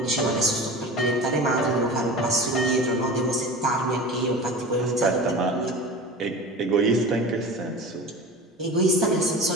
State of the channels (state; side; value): normal; both; correlation 0.34